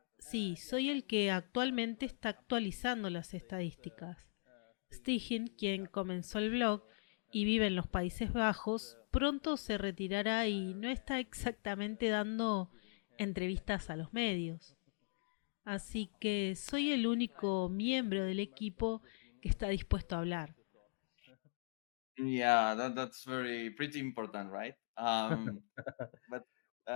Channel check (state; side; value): silent; right; digital silence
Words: Sí, soy el que actualmente está actualizando las estadísticas. Stigen, quien comenzó el blog y vive en los Países Bajos, pronto se retirará y no está exactamente dando entrevistas a los medios. Así que soy el único miembro del equipo que está dispuesto a hablar. Yeah, that's very pretty important, right? But